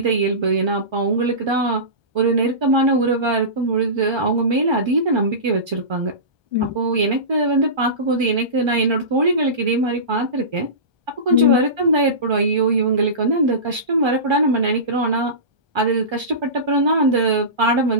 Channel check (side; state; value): left; late; 1.3 ms